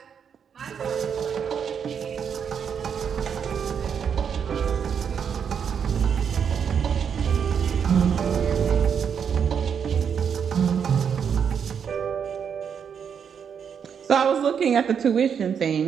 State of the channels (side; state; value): left; quieter; 7.3 dB